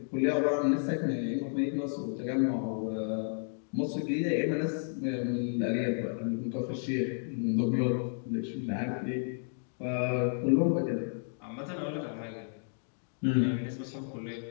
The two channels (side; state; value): right; silent; digital silence